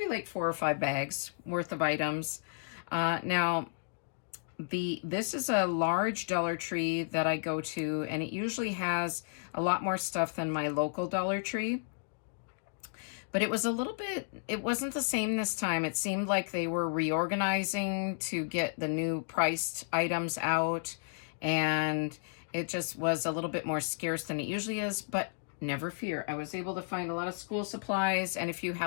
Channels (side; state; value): right; silent; digital silence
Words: like 4 or 5 bags worth of items. Now, this is a large Dollar Tree that I go to, and it usually has a lot more stuff than my local Dollar Tree. But it was it wasn't the same this time. It seemed like they were reorganizing to get the new priced items out, and it just was a little bit more scarce than it usually is, but never fear. I was able to find a lot of school supplies and a few